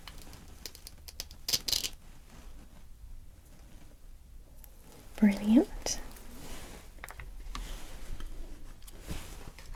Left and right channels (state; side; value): identical; both; correlation 1.00